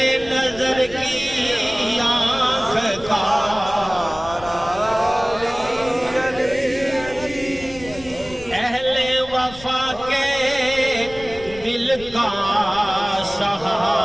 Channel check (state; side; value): noise; left; rumble, 18 dB below the sound